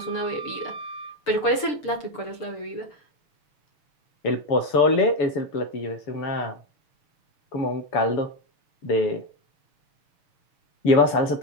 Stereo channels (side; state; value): right; late; 6.8 ms